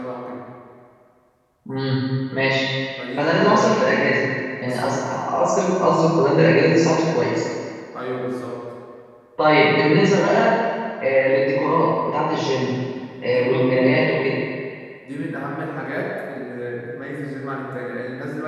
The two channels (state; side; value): identical; both; correlation 1.00